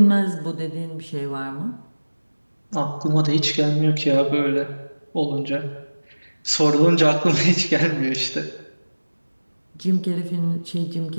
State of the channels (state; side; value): inverted; both; correlation -1.00